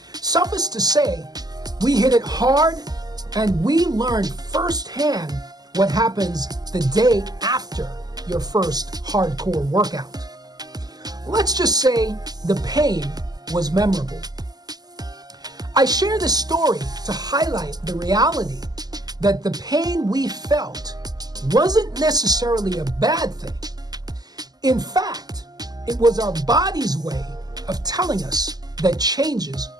Suffice to say, we hit it hard and we learned firsthand what happens the day after your first hardcore workout. Let's just say the pain was memorable. I share this story to highlight the reality that the pain we felt wasn't necessarily a bad thing. In fact, it was our body's way of telling us that changes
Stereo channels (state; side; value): late; left; 0.19 ms